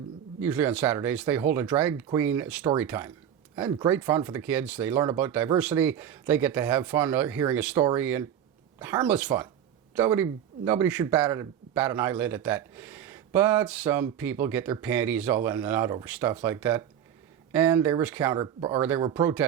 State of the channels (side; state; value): left; quieter; 9.7 dB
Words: usually on Saturdays, they hold a Drag Queen Storytime. And great fun for the kids. They learn about diversity. They get to have fun hearing a story, and harmless fun. Nobody should bat an eyelid at that. But some people get their panties all in and out over stuff like that. And there were